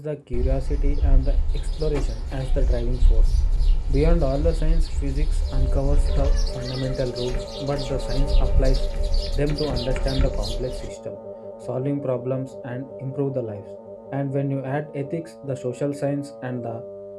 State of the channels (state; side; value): identical; both; correlation 1.00